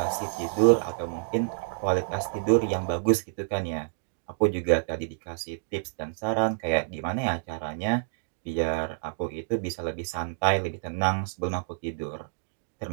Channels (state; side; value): silent; left; digital silence